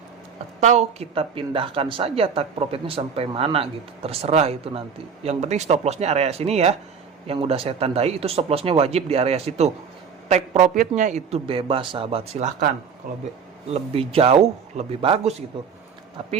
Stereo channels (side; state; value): left; quieter; 6.4 dB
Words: Atau kita pindahkan saja target profitnya sampai mana gitu, terserah itu nanti. Yang penting stop lossnya area sini ya, yang udah saya tandai itu stop lossnya wajib di area situ. Take profitnya itu bebas sahabat, silahkan. Kalau lebih jauh lebih bagus gitu.